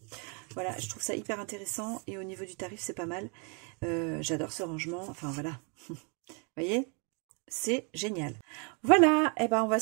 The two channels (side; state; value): left; quieter; 36.3 dB